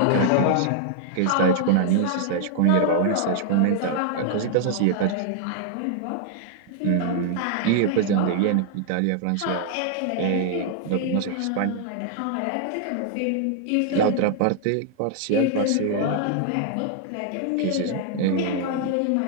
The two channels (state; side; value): different; both; correlation -0.01